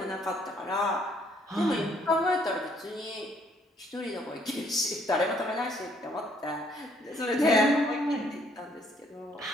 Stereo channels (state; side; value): normal; both; correlation 0.66